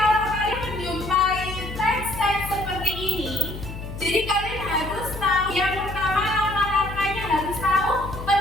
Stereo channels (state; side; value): noise; left; hum, 10 dB below the sound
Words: kalian menjumpai teks-teks seperti ini, jadi kalian harus tahu yang pertama, langkah-langkahnya harus tahu